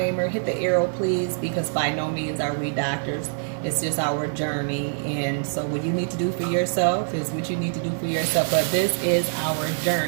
Hit the arrow, please, because by no means are we doctors. It's just our journey. And so what you need to do for yourself is what you need to do for yourself. But this is our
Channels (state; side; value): silent; left; digital silence